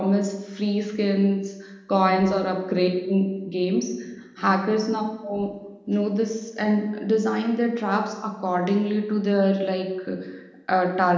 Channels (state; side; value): identical; both; correlation 1.00